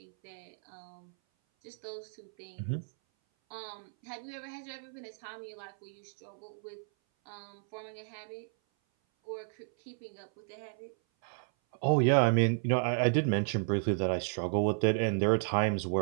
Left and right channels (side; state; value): left; silent; 56 dB below the other